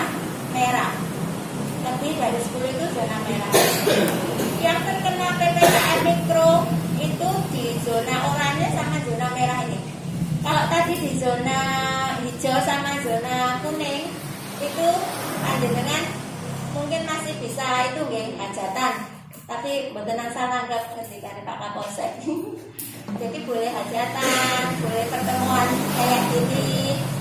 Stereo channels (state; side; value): identical; both; correlation 1.00